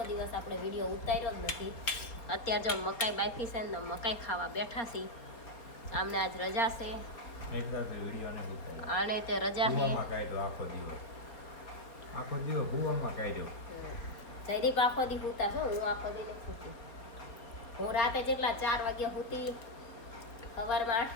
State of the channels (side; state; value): right; late; 4.3 ms